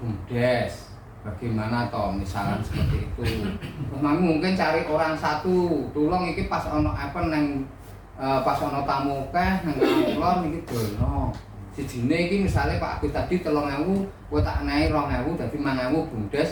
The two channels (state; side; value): identical; both; correlation 1.00